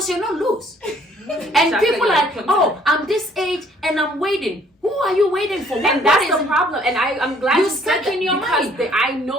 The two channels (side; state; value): both; normal; correlation 0.61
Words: you're not loose. And Exactly, people like, are, oh, I'm this age and I'm waiting. Who are you waiting for? What, and what that's is the it? problem. And I'm glad You you said stuck that in your because mind. I